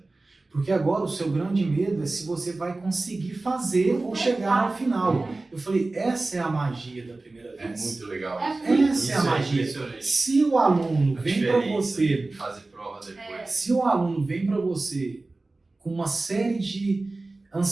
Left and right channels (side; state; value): left; quieter; 3.2 dB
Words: Porque agora o seu grande medo é se você vai conseguir fazer ou chegar ao final. Eu falei, essa é a magia da primeira vez. É muito legal. Essa é a magia. Se o aluno vem para você, fazer prova depois. se o aluno vem para você com uma série de